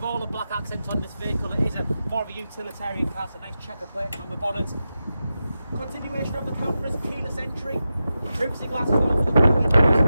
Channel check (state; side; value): inverted; both; correlation -0.91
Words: all the black accents on this vehicle. It is more of a utilitarian car, so nice checker plate on the bonnet. Continuation of the cameras, keyless entry, privacy glass as well for the rear windows.